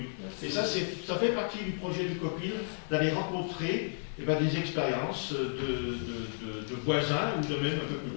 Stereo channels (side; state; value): right; silent; 56 dB below the other